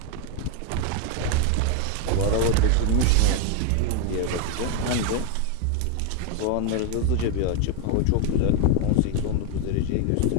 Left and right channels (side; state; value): both; different; correlation 0.01